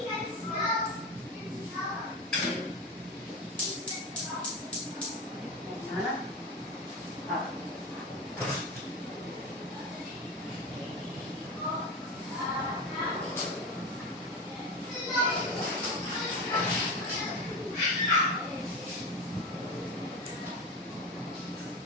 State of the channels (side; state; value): both; normal; correlation 0.23